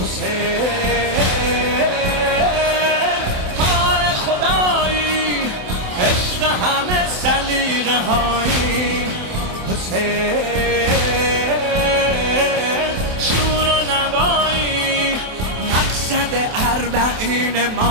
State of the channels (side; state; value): left; late; 27 ms